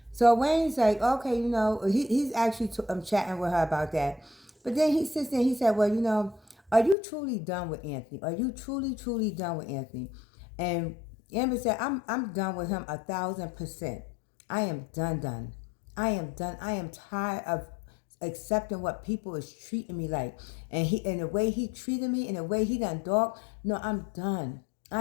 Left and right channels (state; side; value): drops out; right; at 7.0 s